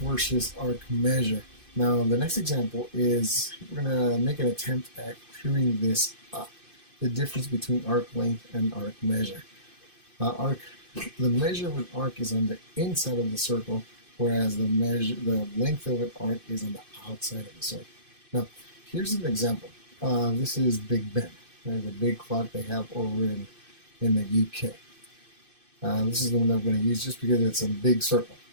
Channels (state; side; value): late; left; 2.5 ms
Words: arc measure. Now, the next example is we're going to make an attempt at clearing this up. The difference between arc length and arc measure. The measure of an arc is on the inside of the circle, whereas the length of an arc is on the outside of the circle. Now, here's an example. This is Big Ben, right? The big clock they have over in the UK. This is the one that I'm going to use just because it's a big circle.